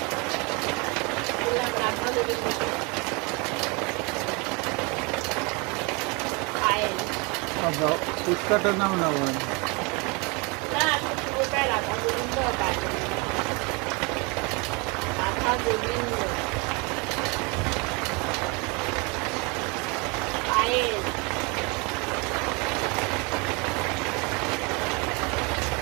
বললাম রাধা গোবিন্দ, পায়েল। ফুচকাটার নাম না বলেন না, পুরোটাই রাধা গোবিন্দ আর পায়েল। রাধা গোবিন্দ পায়েল।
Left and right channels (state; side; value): quieter; left; 29.6 dB